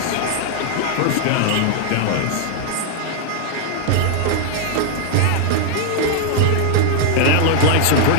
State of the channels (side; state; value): both; different; correlation 0.00